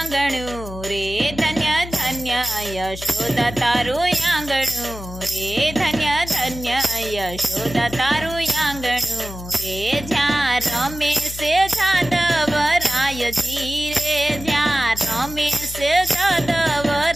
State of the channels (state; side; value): noise; left; hum, 12 dB below the sound